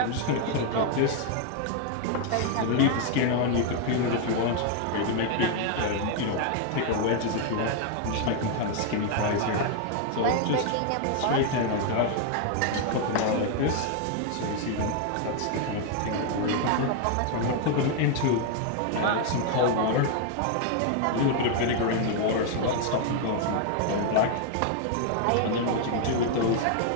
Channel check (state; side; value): different; both; correlation 0.00